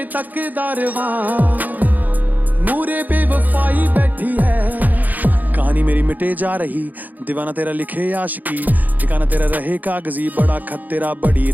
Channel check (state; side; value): late; left; 0.082 ms